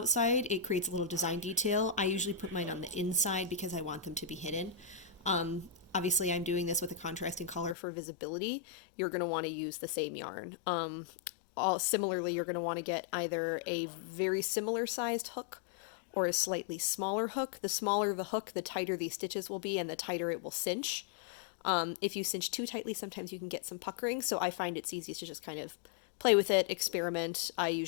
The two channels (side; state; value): right; drops out; at 7.8 s